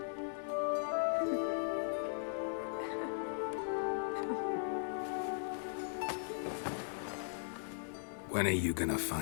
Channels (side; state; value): right; silent; digital silence